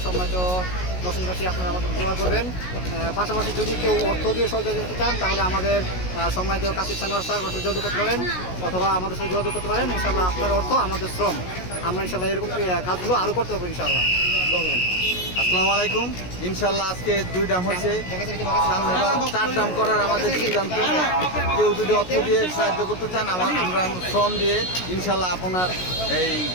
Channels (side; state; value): right; late; 16 ms